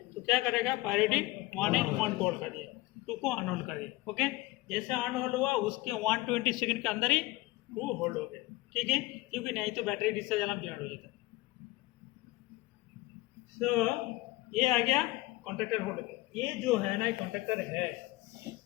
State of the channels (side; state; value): right; quieter; 20.2 dB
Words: तो क्या करेगा, प्रायोरिटी 1 है, 1 को होल्ड कर दिया, 2 को अनहोल्ड कर दिया। ओके, जैसे अनहोल्ड हुआ उसके 120 सेकंड के अंदर ही 2 होल्ड हो गया। ठीक है, क्योंकि नहीं तो बैटरी डिस्चार्ज अलार्म जनरेट हो जाता है। तो ये आ गया कॉन्ट्रैक्टर होल्ड के। ये जो है ना, कॉन्ट्रैक्टर है,